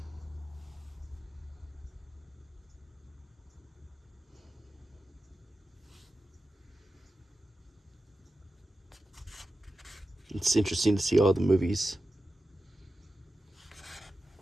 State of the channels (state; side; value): normal; both; correlation 0.92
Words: It's interesting to see all the movies.